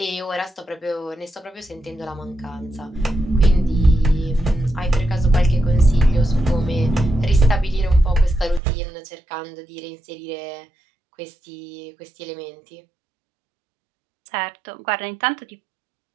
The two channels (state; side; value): drops out; left; at 8.6 s